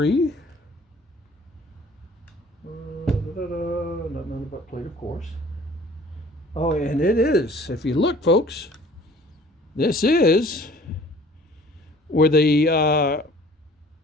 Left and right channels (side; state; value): both; normal; correlation 0.51